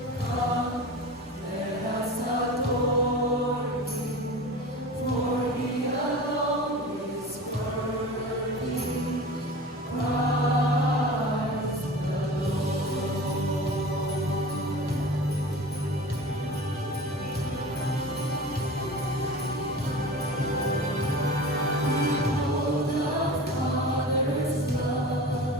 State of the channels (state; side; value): normal; both; correlation 0.35